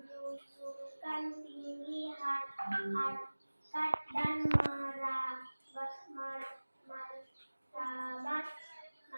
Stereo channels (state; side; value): inverted; both; correlation -1.00